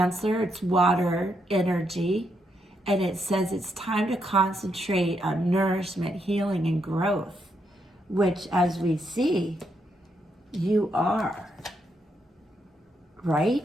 it's water energy, and it says it's time to concentrate on nourishment, healing, and growth, which, as we see, you are,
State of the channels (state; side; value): normal; both; correlation 0.78